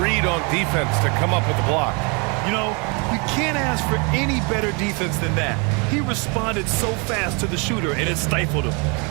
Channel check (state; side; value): quieter; left; 31.9 dB